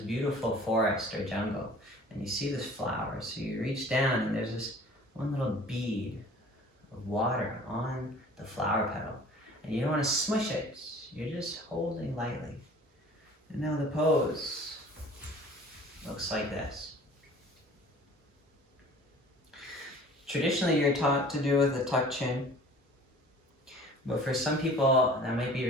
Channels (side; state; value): both; normal; correlation 0.47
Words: forest or jungle, and you see this flower. So you reach down and there's this one little bead of water on the flower petal. And you don't want to smush it, you're just holding lightly. And now the pose looks like this. Traditionally, you're taught to do with a tucked chin, but for some people, that might be